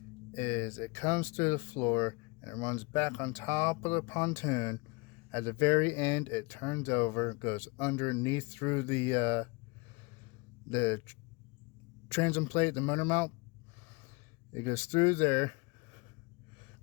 is it comes through the floor and it runs back on top of the pontoon. At the very end, it turns over, goes underneath through the transom plate, the motor mount. It goes through there,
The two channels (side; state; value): right; quieter; 27.8 dB